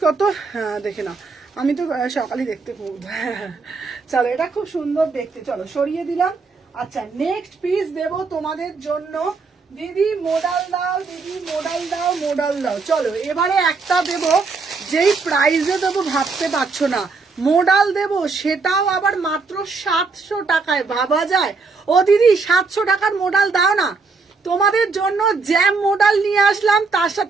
কত, হ্যাঁ দেখে নাও, আমি তো সকালে দেখতে খুব, চলো এটা খুব সুন্দর দেখতে। চলো সরিয়ে দিলাম। আচ্ছা, নেক্সট পিস দেবো তোমাদের জন্য। দিদি মোডাল দাও, দিদি মোডাল দাও, মোডাল দাও। চলো এবারে একটা দেবো যেই প্রাইসে দেবো ভাবতে পারছো না, মোডাল দেবো সেটাও আবার মাত্র 700 টাকায়। ভাবা যায়? ও দিদি 700 টাকার মোডাল দাও না, তোমাদের জন্য জ্যাম মোডাল নিয়ে আসলাম, তার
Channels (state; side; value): quieter; left; 4.4 dB